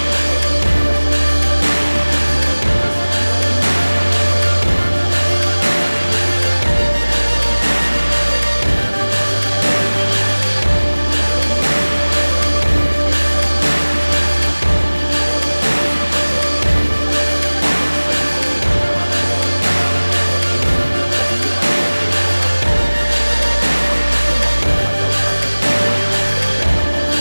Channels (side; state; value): both; inverted; correlation -1.00